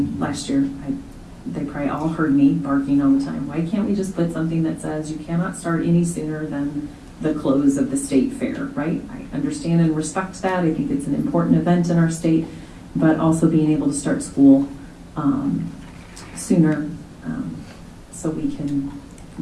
last year? They probably all heard me barking all the time. Why can't we just put something that says you cannot start any sooner than the close of the state fair, right? I understand and respect that. I think it's an important event in our state, but also being able to start school sooner so we can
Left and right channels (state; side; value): identical; both; correlation 1.00